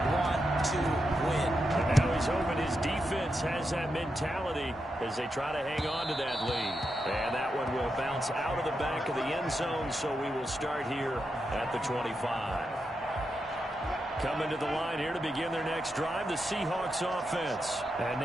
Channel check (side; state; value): both; normal; correlation 0.86